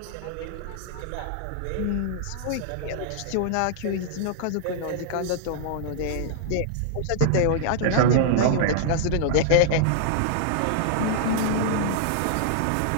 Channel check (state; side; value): different; both; correlation -0.01